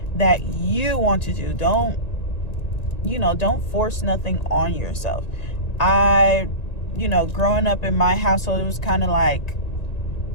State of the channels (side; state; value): right; late; 1.9 ms